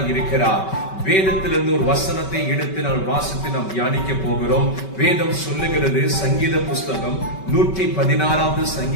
இருக்கிறார். வேதத்திலிருந்து ஒரு வசனத்தை எடுத்து நாம் வாசித்து நாம் தியானிக்க போகிறோம். வேதம் சொல்லுகிறது, சங்கீத புஸ்தகம் 116வது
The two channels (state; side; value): late; right; 5.2 ms